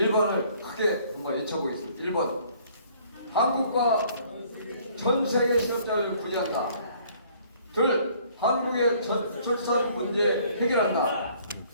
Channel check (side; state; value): both; inverted; correlation -0.59